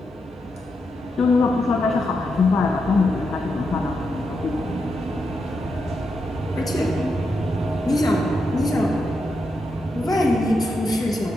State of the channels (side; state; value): both; normal; correlation 0.85